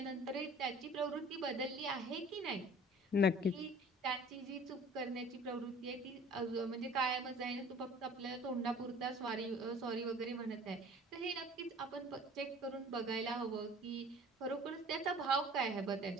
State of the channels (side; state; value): both; normal; correlation 0.47